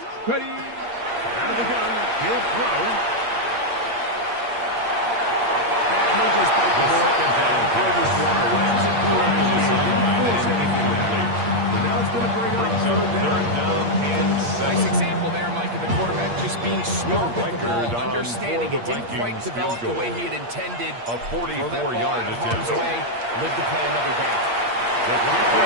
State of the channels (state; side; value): late; left; 8.6 ms